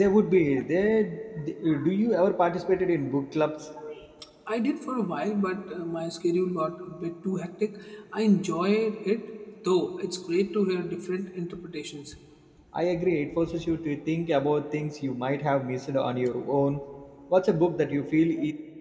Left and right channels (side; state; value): both; identical; correlation 1.00